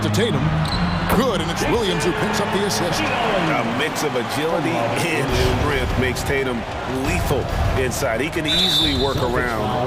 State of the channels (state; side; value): identical; both; correlation 1.00